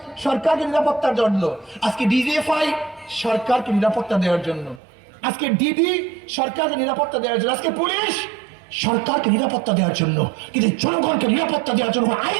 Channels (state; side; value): drops out; left; at 4.8 s